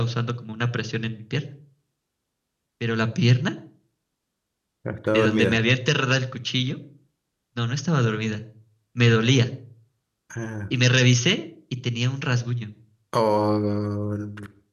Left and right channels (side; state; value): both; identical; correlation 1.00